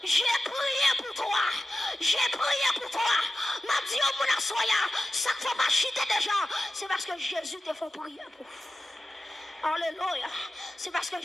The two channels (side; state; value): both; normal; correlation 0.95